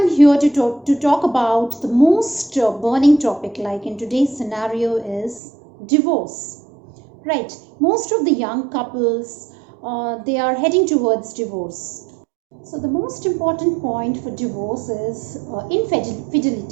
here to talk about the most burning topic, like in today's scenario, is divorce. Right, most of the young couples they are heading towards divorce. So the most important point for divorce is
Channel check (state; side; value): drops out; left; at 5.4 s